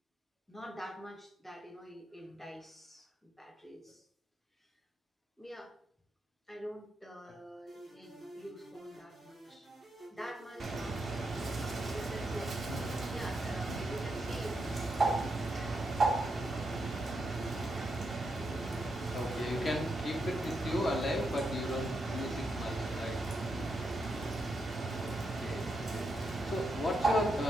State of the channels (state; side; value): normal; both; correlation 0.83